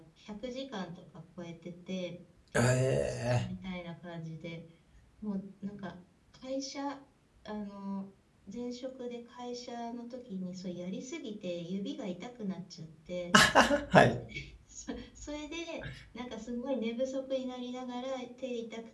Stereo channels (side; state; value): both; identical; correlation 1.00